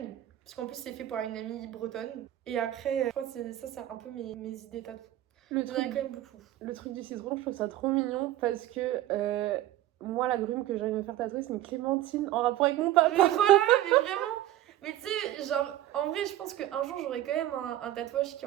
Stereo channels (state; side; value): quieter; left; 13.8 dB